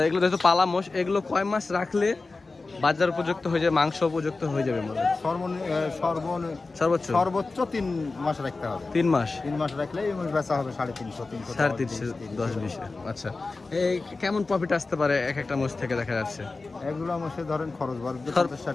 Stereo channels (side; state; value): right; quieter; 3.7 dB